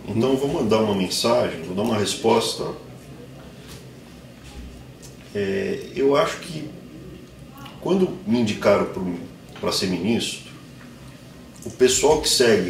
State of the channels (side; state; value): both; identical; correlation 1.00